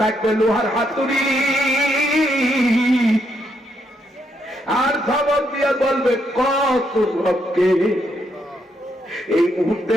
থাকবে লোহার হাতুড়ি, আর ধমক দিয়ে বলবে, কত রবকে? এই মুহূর্তে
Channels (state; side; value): normal; both; correlation 0.77